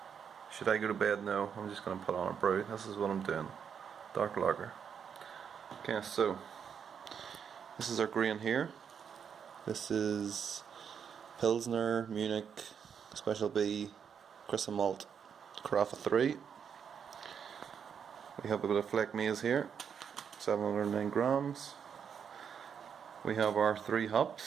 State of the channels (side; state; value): left; quieter; 7.3 dB